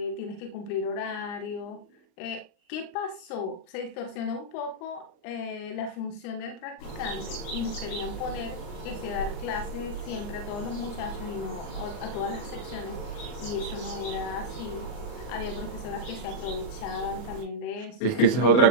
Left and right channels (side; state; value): right; late; 39 ms